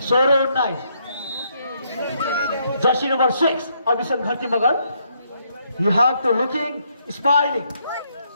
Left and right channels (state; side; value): inverted; both; correlation -0.74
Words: jersey number 6 Abhishan Gharti Magar you have to looking smiling